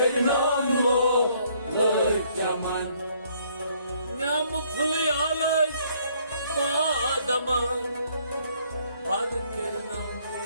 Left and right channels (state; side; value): inverted; both; correlation -0.65